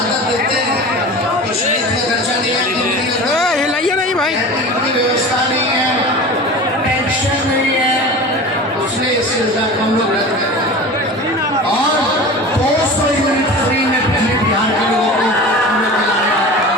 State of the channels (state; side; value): normal; both; correlation 0.34